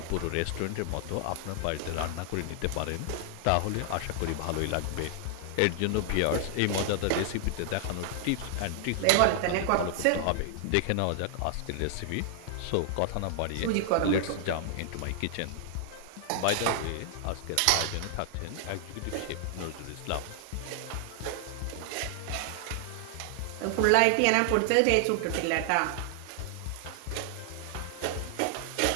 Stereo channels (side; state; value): both; different; correlation 0.00